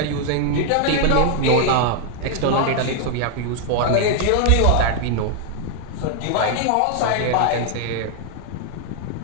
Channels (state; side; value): different; both; correlation 0.00